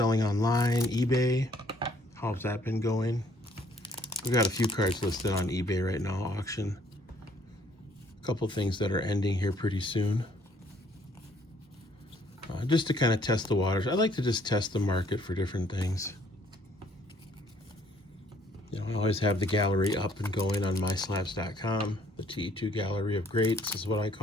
online, eBay? How's that been going? We've got a few cards listed on eBay right now, auction. A couple things that are ending here pretty soon. Just to kind of test the waters. I like to just test the market for different things. You know, I always have the gallery up and going on myslabs.com. The TE2 Gallery of Greats is what I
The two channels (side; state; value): both; normal; correlation 0.63